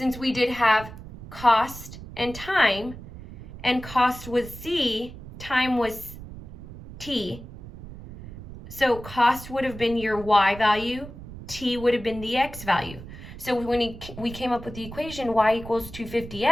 we did have cost and time, and cost was C, time was T. So cost would have been your y value, T would have been the x value. So when we came up with the equation y equals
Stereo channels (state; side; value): noise; right; rumble, 14 dB below the sound